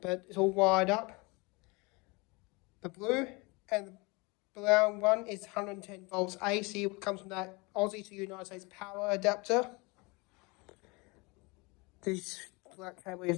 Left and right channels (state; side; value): quieter; right; 27.0 dB